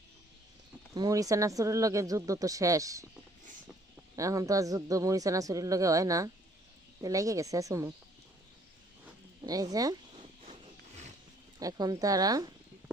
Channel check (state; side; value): normal; both; correlation 0.61